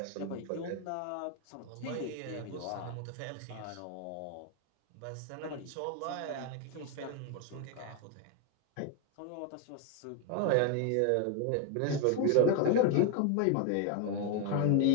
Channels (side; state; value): both; different; correlation 0.01